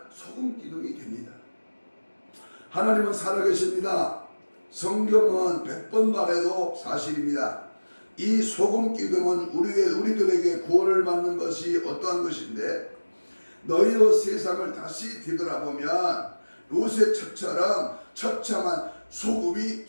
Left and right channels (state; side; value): inverted; both; correlation -1.00